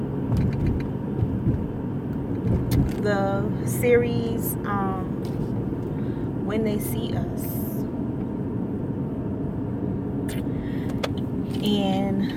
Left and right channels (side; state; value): both; identical; correlation 1.00